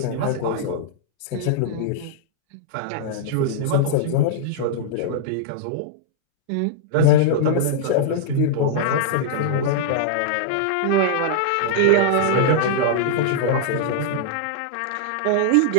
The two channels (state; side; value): different; both; correlation -0.01